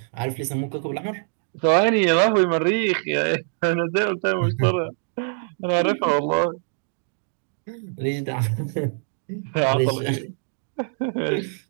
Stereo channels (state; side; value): silent; left; digital silence